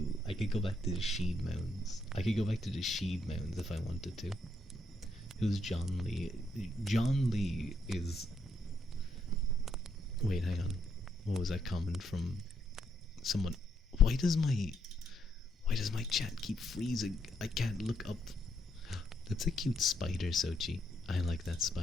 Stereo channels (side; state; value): both; normal; correlation 0.76